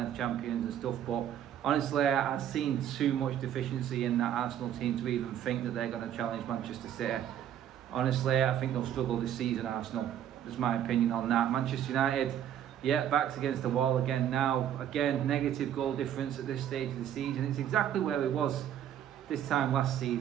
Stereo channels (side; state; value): left; quieter; 10.4 dB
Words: of champions and stuff, but honestly, I've seen too much deficiency in that Arsenal team to even think that they're going to challenge Manchester City. Honestly, I think they'll struggle this season, Arsenal. That's my opinion on that. Manchester United, yeah, backs against the wall again now. Again, negative goal difference at this stage of the season. It's exactly where it was this time last